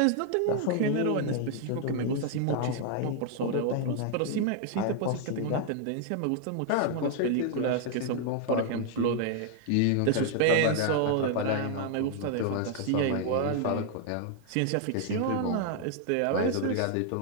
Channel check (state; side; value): different; both; correlation 0.00